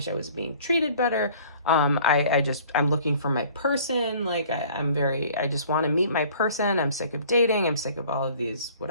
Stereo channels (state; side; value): inverted; both; correlation -0.52